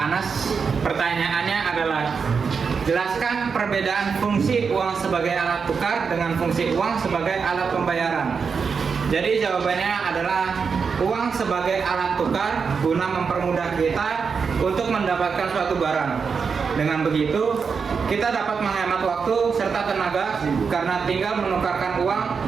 Pertanyaannya adalah, jelaskan perbedaan fungsi uang sebagai alat tukar dengan fungsi uang sebagai alat pembayaran. Jadi jawabannya adalah uang sebagai alat tukar guna mempermudah kita untuk mendapatkan suatu barang. Dengan begitu, kita dapat menghemat waktu serta tenaga karena tinggal menukarkan uang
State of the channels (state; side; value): quieter; left; 5.7 dB